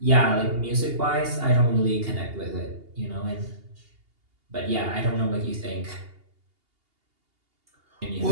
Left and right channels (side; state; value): left; late; 2.8 ms